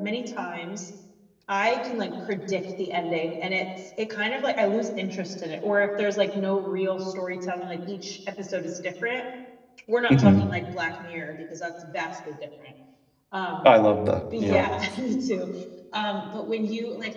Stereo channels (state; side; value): identical; both; correlation 1.00